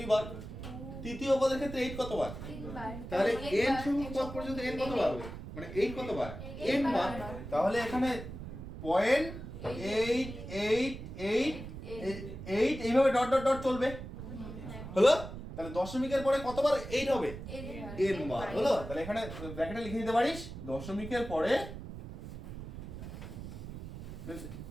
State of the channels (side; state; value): right; noise; rumble, 10 dB below the sound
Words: তৃতীয় পদের ক্ষেত্রে 8 কতবার? তাহলে n সংখ্যক পদ পর্যন্ত n কতবার হবে? মানে 8 কতবার? n বার। তাহলে এখানে 0.888 এইভাবে ডট ডট ডট চলবে, হলো? তাহলে দশমিকের পরে কতবার 8 হবে? n বার, হলো? তাহলে এখানে ব্র্যাকেটে লিখে দিতে পারিস, দশমিকের পরে